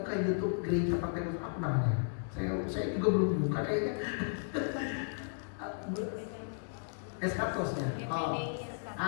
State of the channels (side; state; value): right; silent; digital silence